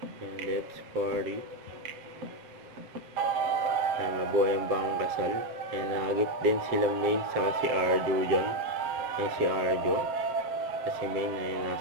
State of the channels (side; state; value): left; late; 7.6 ms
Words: Yan, let's party. Yan, mabuhay ang bang kasal. Yan, nagagip din sila May saka si Arjo dyan. Yan si Arjo. Kasi May na yan